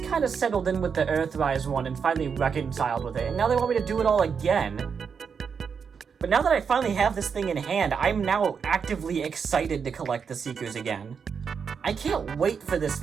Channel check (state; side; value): quieter; left; 6.3 dB